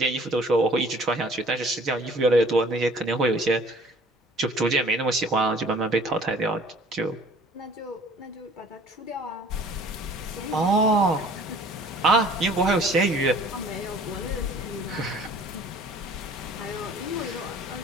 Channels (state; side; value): normal; both; correlation 0.51